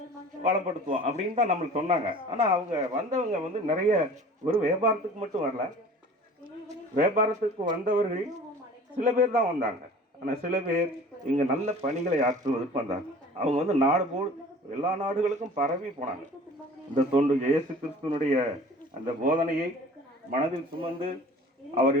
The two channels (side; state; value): both; normal; correlation 0.45